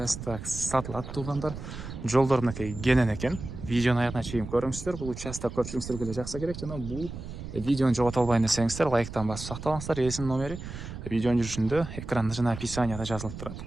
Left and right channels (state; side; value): noise; right; rumble, 10 dB below the sound